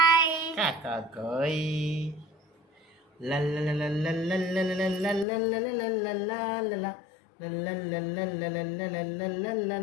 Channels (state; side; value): drops out; right; at 5.2 s